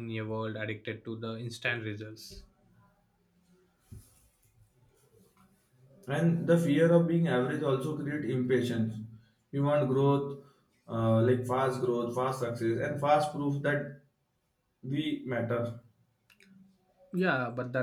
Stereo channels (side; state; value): both; identical; correlation 1.00